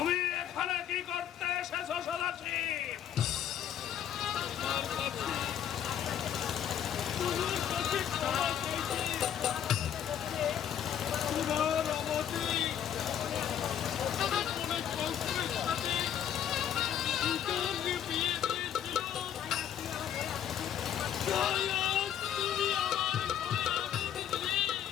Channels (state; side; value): quieter; right; 9.8 dB